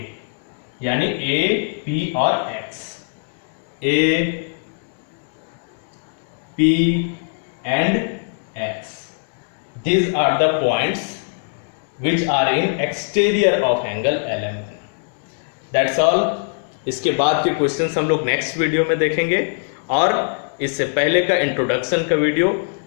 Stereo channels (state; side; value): silent; right; 65 dB below the other